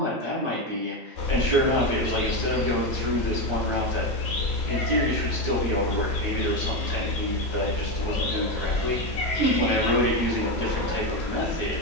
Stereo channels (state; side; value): normal; both; correlation 0.13